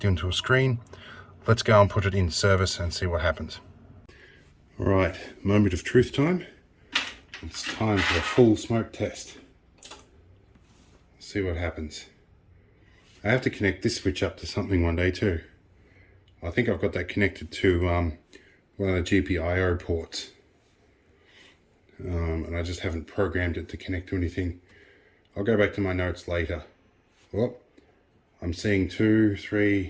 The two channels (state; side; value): identical; both; correlation 1.00